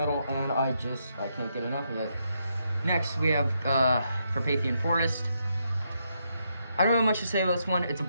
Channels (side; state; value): both; inverted; correlation -0.79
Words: and I can't get enough of it. Next, we have Carpathian Forest. I don't have much to say about this one. It's a